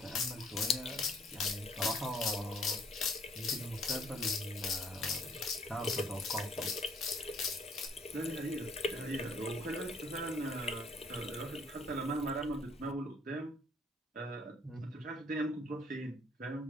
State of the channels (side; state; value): both; normal; correlation 0.60